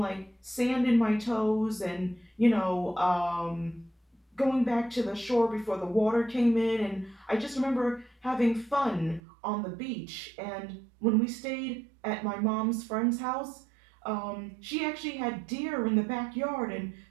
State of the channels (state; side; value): drops out; left; at 9.2 s